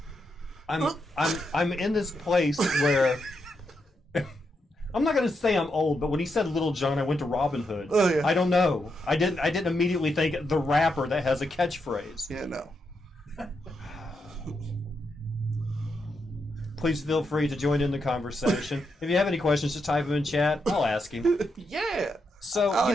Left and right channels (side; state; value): both; normal; correlation 0.83